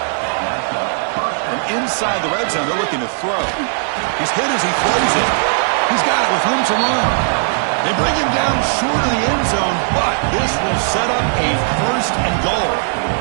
From inside the red zone, they're looking to throw. He's hit as he throws it. He's got it with room to run. They bring him down short of the end zone, but this will set up a 1st and goal.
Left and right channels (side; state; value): left; silent; digital silence